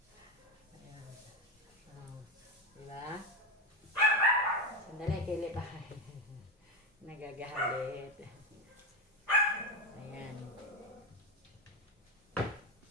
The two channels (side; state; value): both; normal; correlation 0.11